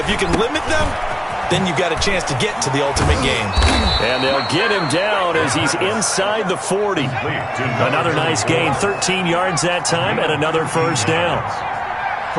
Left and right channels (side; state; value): both; identical; correlation 1.00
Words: if you can limit them, then you got a chance to get to the ultimate game. And they'll get him down as he's inside the 40. Another nice gain, 13 yards that time, and another first down.